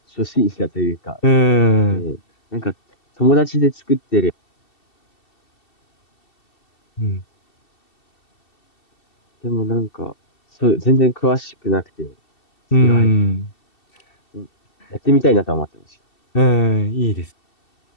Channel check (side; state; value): right; late; 2.7 ms